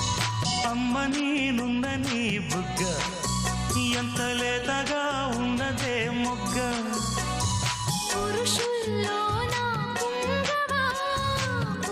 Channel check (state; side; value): identical; both; correlation 1.00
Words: అమ్మ నేనున్న నీ బుగ్గ ఎంత లేత